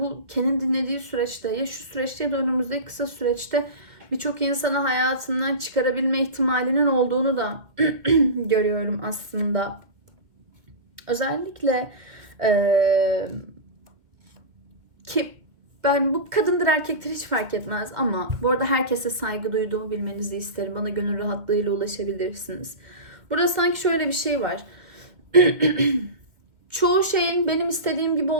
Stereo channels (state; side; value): late; left; 2.0 ms